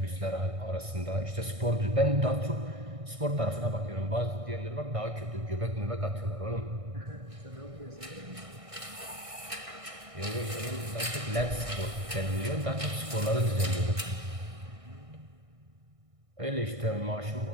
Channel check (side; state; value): left; late; 1.6 ms